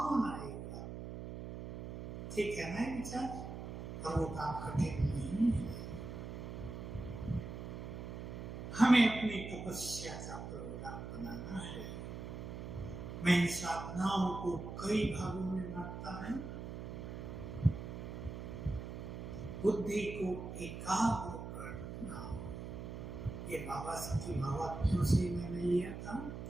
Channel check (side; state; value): right; noise; hum, 7 dB below the sound